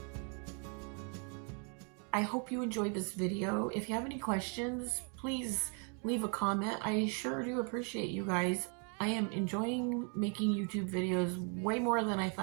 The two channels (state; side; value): quieter; left; 39.1 dB